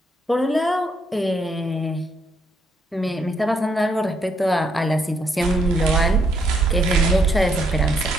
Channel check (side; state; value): both; normal; correlation 0.73